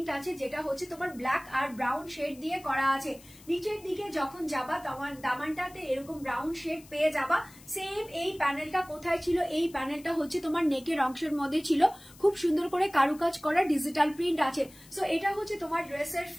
আছে, যেটা হচ্ছে তোমার ব্ল্যাক আর ব্রাউন শেড দিয়ে করা আছে। নিচের দিকে যখন যাবা তোমার দামানটাতে এরকম ব্রাউন শেড পেয়ে যাবা। সেম এই প্যানেলটা কোথায় ছিল, এই প্যানেলটা হচ্ছে তোমার নেকের অংশের মধ্যে ছিল, খুব সুন্দর করে কারুকাজ করা ডিজিটাল প্রিন্ট আছে। সো এটা হচ্ছে তোমার ড্রেসের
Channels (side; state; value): left; noise; hiss, 23 dB below the sound